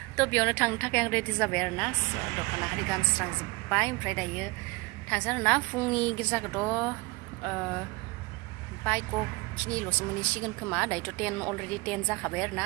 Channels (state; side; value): quieter; left; 24.9 dB